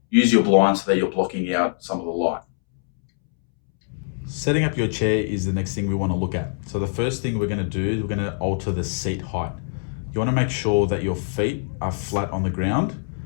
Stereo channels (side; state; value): right; silent; 63 dB below the other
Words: use your blinds so that you're blocking out some of the light. Setting up your chair is the next thing we want to look at. So the first thing we're going to do is we're going to alter the seat height. You want to make sure that your feet are flat on the ground,